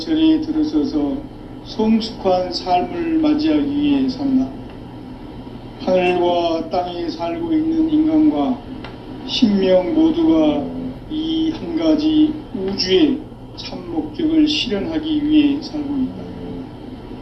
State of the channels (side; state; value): both; identical; correlation 1.00